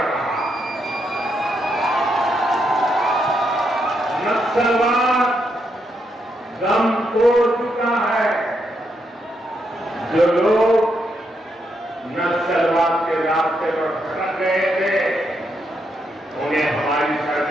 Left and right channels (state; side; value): normal; both; correlation 0.80